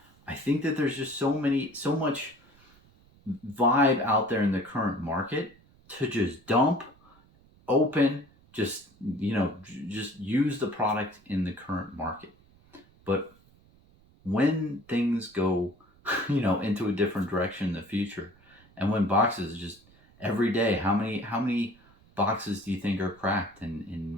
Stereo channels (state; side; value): noise; right; rumble, 29 dB below the sound